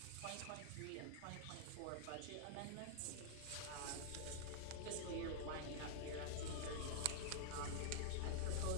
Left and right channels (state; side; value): different; both; correlation -0.01